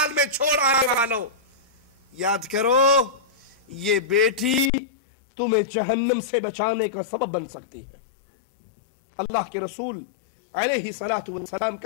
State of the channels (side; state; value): right; drops out; at 4.7 s